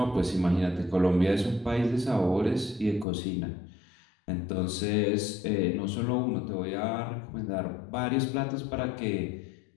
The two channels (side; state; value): right; drops out; at 3.1 s